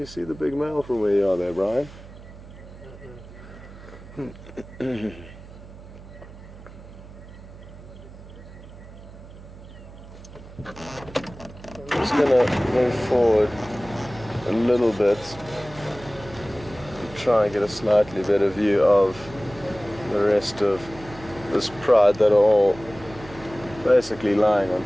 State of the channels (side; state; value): right; noise; hum, 17 dB below the sound